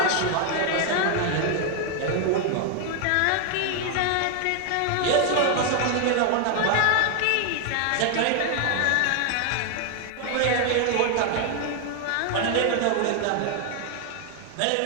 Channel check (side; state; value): both; different; correlation 0.00